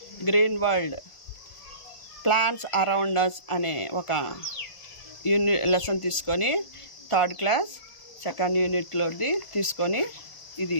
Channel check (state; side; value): late; right; 1.4 ms